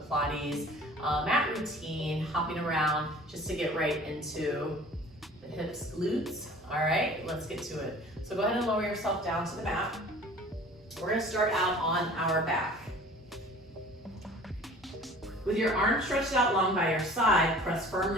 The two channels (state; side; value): normal; both; correlation 0.47